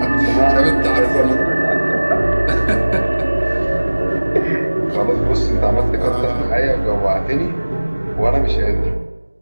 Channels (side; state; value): both; inverted; correlation -1.00